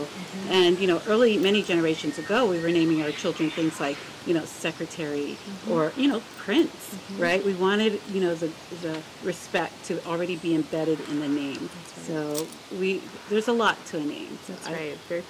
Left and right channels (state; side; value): identical; both; correlation 1.00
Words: And, you know, many generations ago, we were naming our children things like, you know, secretary or, you know, prince, right? We wanted, you know, the respect to already be embedded in the name. Right. So there's a lot to a name. So That's right. Very